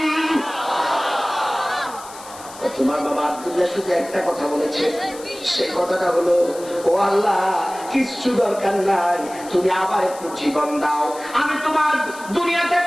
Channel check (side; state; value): left; noise; hiss, 17 dB below the sound